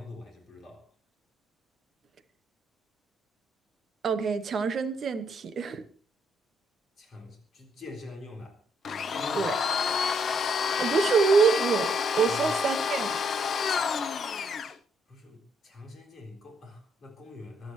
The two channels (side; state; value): both; normal; correlation 0.72